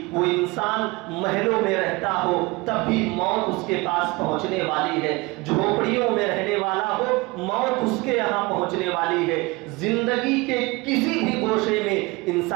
وہ انسان محلوں میں رہتا ہو تب بھی موت اس کے پاس پہنچنے والی ہے، جھوپڑیوں میں رہنے والا ہو موت اس کے یہاں پہنچنے والی ہے۔ زندگی کے کسی بھی گوشے میں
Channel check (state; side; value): quieter; left; 23.9 dB